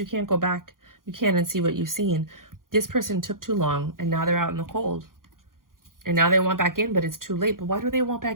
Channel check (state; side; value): late; left; 0.91 ms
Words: can't go back. You can't unsee what you've seen. This person took too long, and now they're out in the cold. And now they want back in, but it's too late. But why do they want